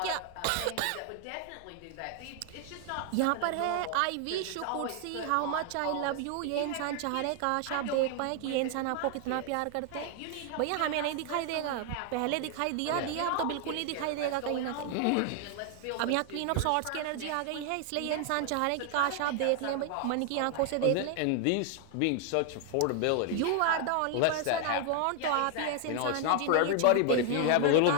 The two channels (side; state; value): both; different; correlation 0.00